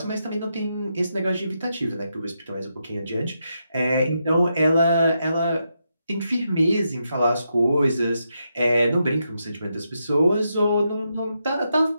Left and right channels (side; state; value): both; inverted; correlation -0.83